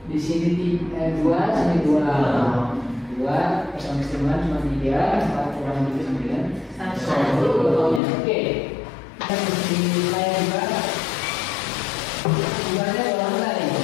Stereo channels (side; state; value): right; drops out; at 8.0 s